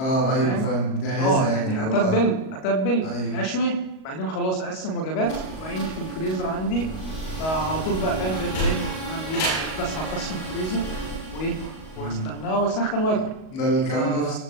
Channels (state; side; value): late; right; 38 ms